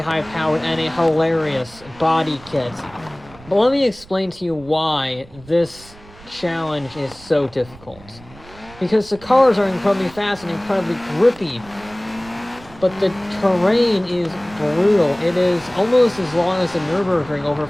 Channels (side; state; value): right; noise; rumble, 22 dB below the sound